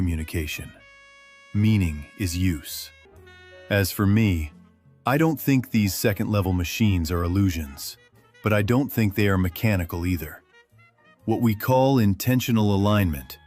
Meaning is use. As for me, I don't think these second-level machines are illusions, but I don't think they are mechanical either. What we call intentional alignment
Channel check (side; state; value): both; identical; correlation 1.00